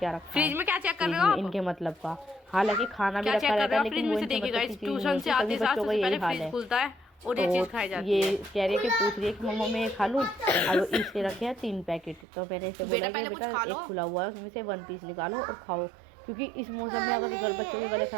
रखा फ्रिज है में, क्या चेक कर रहे हो आप? इनके मतलब का। हालांकि खाना भी क्या रखा चेक कर रहता रहे है, हो? लेकिन फ्रिज वो में से इनके देखिए मतलब गाइस, की चीज़ ट्यूशन नहीं से होती, आते सभी साथ बच्चों का सबसे यही पहले हाल फ्रिज है। खुलता है और ये चीज़ खाई जाती ये है। कह रही है कि पूछ रही है कि मम्मा मैं ये खा लूँ, और इसके रखे हैं 3 पैकेट। तो मैंने इसे बोला कि पहले कुछ बेटा खा लो। एक खुला हुआ है उसमें से 1 पीस निकालो और खाओ, क्योंकि इस मौसम में अगर बच्चों के गले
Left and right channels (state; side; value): drops out; left; at 12.2 s